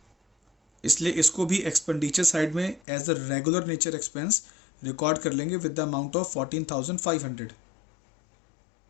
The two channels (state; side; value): drops out; right; at 2.8 s